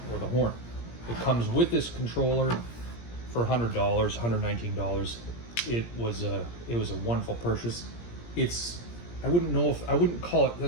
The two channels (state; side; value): late; right; 17 ms